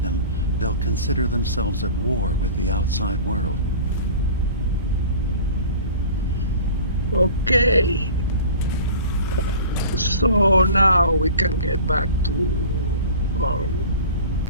them, they'll consider themselves at war with the outside world. Okay. So now we can get back to our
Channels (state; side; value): inverted; both; correlation -0.41